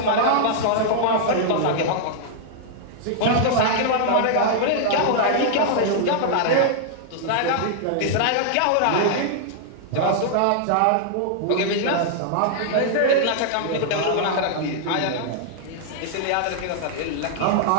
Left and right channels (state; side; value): different; both; correlation -0.01